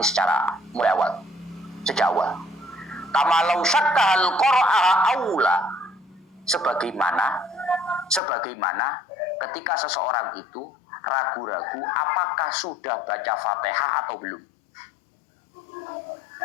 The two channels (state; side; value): drops out; right; at 8.2 s